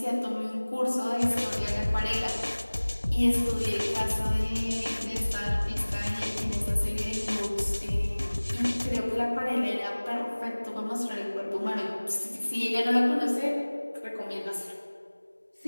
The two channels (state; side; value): inverted; both; correlation -1.00